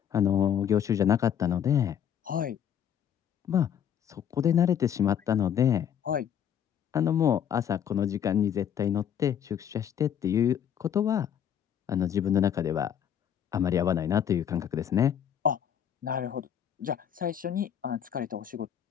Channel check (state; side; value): quieter; right; 9.0 dB